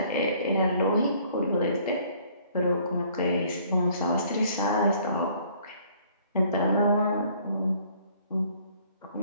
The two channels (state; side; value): inverted; both; correlation -0.59